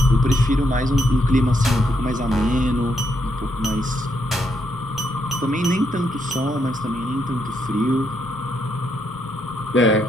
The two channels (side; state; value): both; normal; correlation 0.77